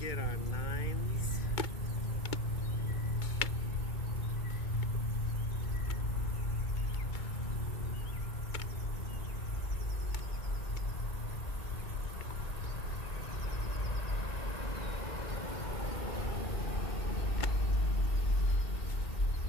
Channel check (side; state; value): right; late; 2.2 ms